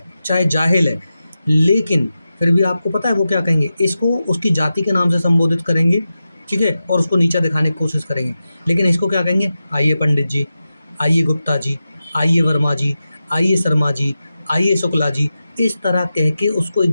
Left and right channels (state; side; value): inverted; both; correlation -0.92